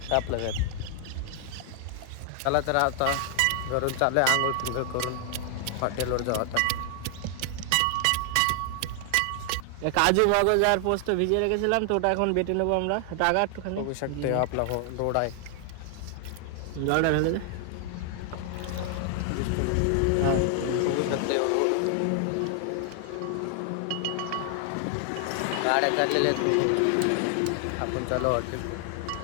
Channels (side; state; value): both; different; correlation 0.00